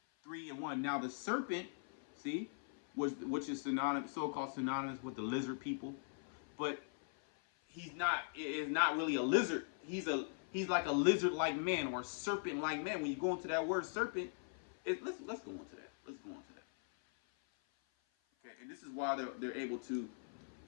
3:1. Now the serpent, see, which is so-called synonymous with the lizard people, but is not really a lizard. He's like a lizard-like man or serpent-like man. When you go into that word serpent, let's go into that. Let's go into that. Okay, and this is why they're able to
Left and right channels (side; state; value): right; silent; 51 dB below the other